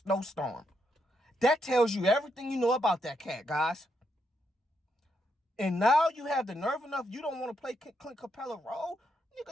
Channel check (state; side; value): normal; both; correlation 0.79